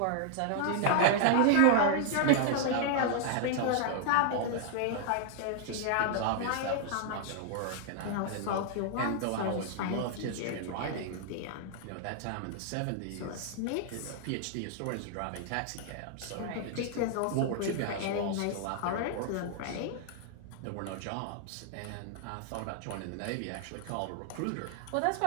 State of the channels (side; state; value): both; different; correlation 0.00